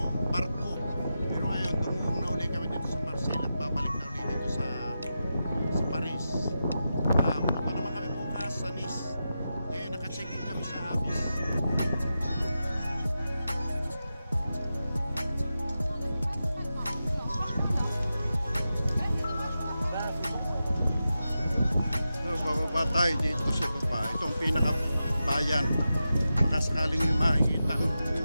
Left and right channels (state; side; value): inverted; both; correlation -0.90